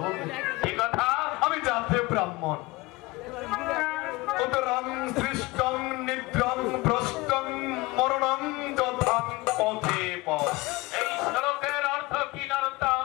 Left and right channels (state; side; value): quieter; right; 22.1 dB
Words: বলবো। কি কথা? আমি জাতে ব্রাহ্মণ, উদরং সৃষ্টং নিদ্রং ভ্রষ্টং মরণং যথাং পথে পথ। এই শ্লোকের অর্থ কি নরোত্তম?